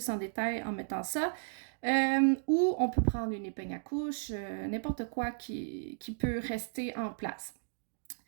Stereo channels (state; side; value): silent; left; digital silence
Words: en détail en mettant ça. Ou on peut prendre une épingle à couche, n'importe quoi qui peut rester en place.